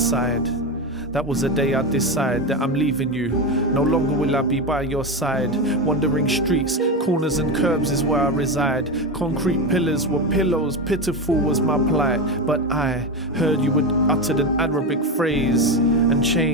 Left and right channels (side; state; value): both; normal; correlation 0.16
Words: That was the day I decide that I'm leaving you. No longer will I be by your side. Wandering streets, corners and curbs is where I reside. Concrete pillars were pillows, pitiful was my plight. But I heard you had uttered an Arabic phrase and